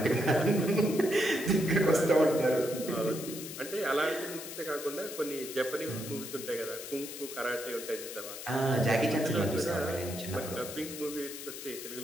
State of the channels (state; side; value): noise; left; hiss, 10 dB below the sound